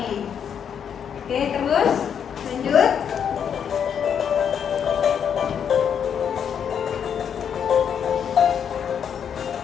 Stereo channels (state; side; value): quieter; right; 8.0 dB